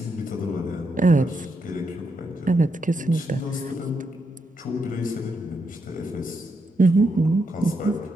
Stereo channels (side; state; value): both; normal; correlation 0.81